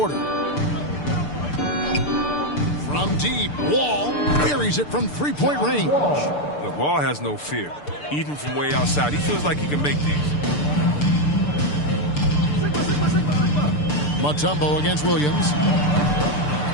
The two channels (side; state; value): right; late; 6.8 ms